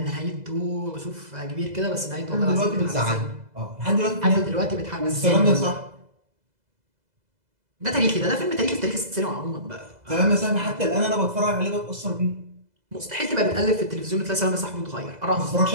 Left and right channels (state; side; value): late; left; 2.0 ms